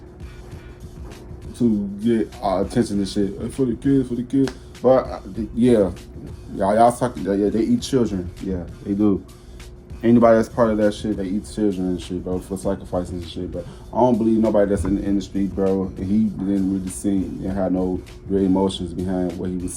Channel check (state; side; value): identical; both; correlation 1.00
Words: get attention and shit. For the kids. But yeah, y'all talking. Yeah, they eat children. Yeah, they do. Anybody that's part of that shit, they eat children and shit, bro, for sacrificing and shit. But I don't believe nobody that's in the industry, bro. And he didn't really seem and had no real emotions behind what he was